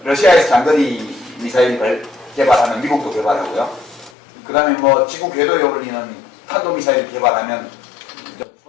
러시아에서 장거리 미사일 개발하면 미국도 개발하고요. 그 다음에 뭐 지구 궤도에 올리는 탄도 미사일 개발하면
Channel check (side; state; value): right; drops out; at 4.1 s